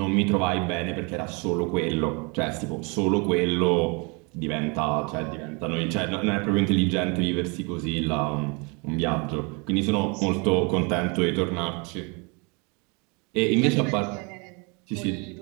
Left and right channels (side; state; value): left; quieter; 31.3 dB